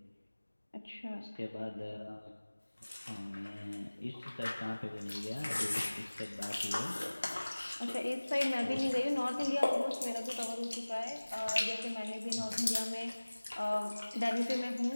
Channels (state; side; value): inverted; both; correlation -1.00